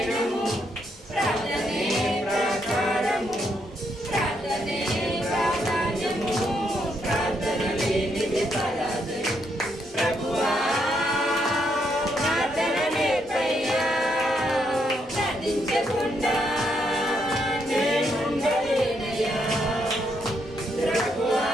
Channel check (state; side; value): normal; both; correlation 0.77